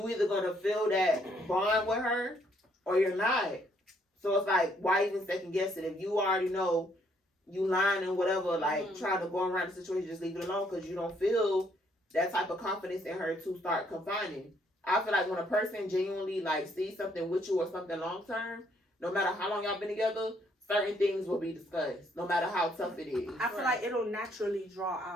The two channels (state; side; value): normal; both; correlation 0.69